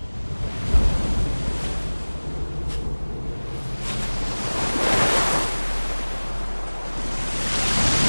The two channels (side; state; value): both; inverted; correlation -1.00